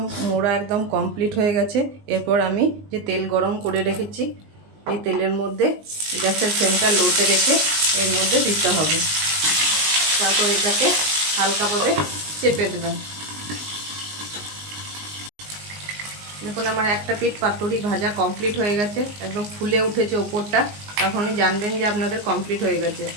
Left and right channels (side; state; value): left; late; 19 ms